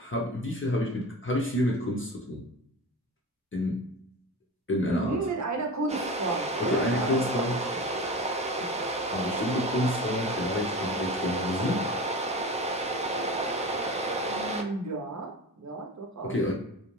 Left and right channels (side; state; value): both; normal; correlation 0.31